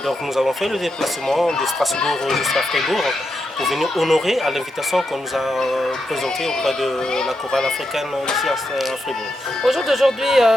nous avons fait le déplacement de Strasbourg jusqu'à Fribourg pour venir honorer à l'invitation qu'on nous a présentée auprès de la chorale africaine ici à Fribourg. Au jour d'aujourd'hui,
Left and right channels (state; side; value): normal; both; correlation 0.85